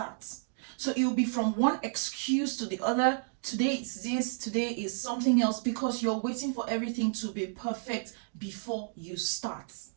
So it will be from one excuse to the other. Today it's this, today is something else, because you're waiting for everything to be perfect before you start.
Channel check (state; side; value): silent; left; digital silence